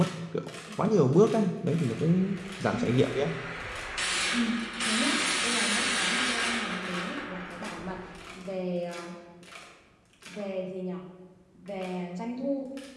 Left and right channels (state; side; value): identical; both; correlation 1.00